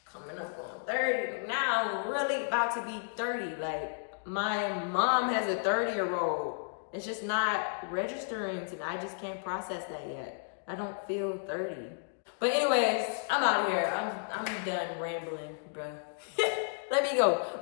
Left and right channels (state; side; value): silent; right; digital silence